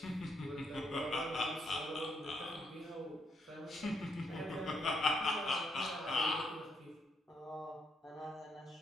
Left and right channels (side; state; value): both; normal; correlation 0.76